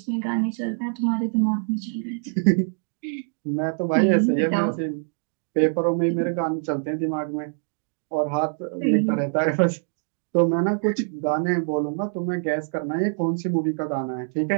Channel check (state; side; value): silent; left; digital silence